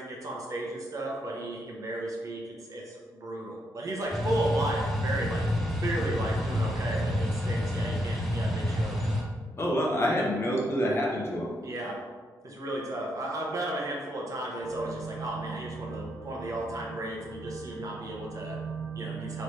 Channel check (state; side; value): normal; both; correlation 0.78